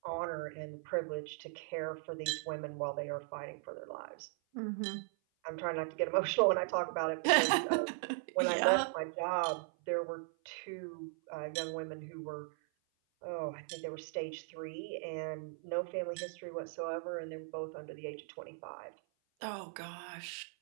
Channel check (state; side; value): silent; left; 52 dB below the other